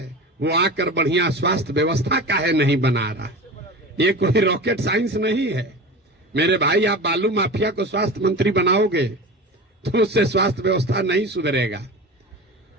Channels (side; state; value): both; normal; correlation 0.31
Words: वो आकर बढ़िया स्वास्थ्य व्यवस्था काहे नहीं बना रहा। ये कोई रॉकेट साइंस नहीं है मेरे भाई। आप बालू माफिया को स्वास्थ्य मंत्री बनाओगे तो उससे स्वास्थ्य व्यवस्था नहीं सुधरेगा।